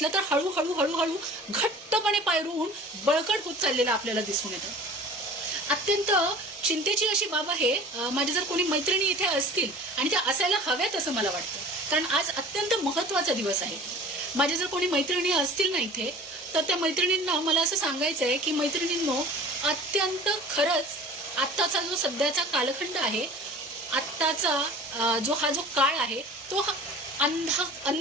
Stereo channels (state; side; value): normal; both; correlation 0.43